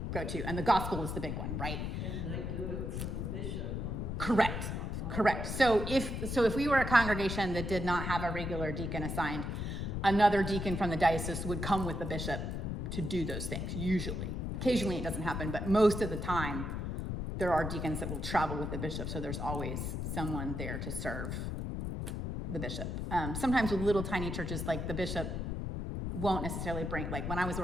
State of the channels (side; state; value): left; noise; rumble, 3 dB below the sound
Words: go-to, and the gospel is the big one, right? And they do it for the bishop when the bishop. Correct. So if we were a congregation that did not have a regular deacon assigned, another deacon from the diocese would come with the bishop to do those things, usually. Occasionally it doesn't happen, but most of the time there are deacons that will travel with the bishop, so there's always someone there to serve the bishop. Sometimes with little tiny churches, like the bishop won't necessarily bring, like when I was